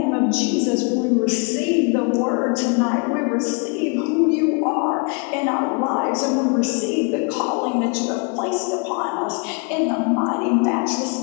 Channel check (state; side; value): quieter; right; 35.7 dB